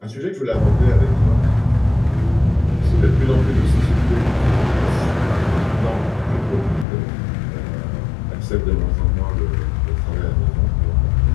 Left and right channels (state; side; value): drops out; right; at 6.9 s